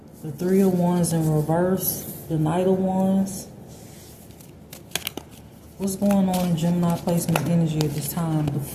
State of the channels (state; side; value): identical; both; correlation 1.00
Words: The Three of Wands in reverse, the Knight of Wands. What's going on in Gemini placement's energy at this time? The